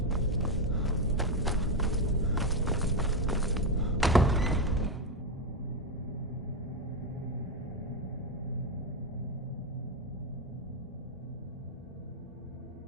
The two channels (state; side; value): normal; both; correlation 0.08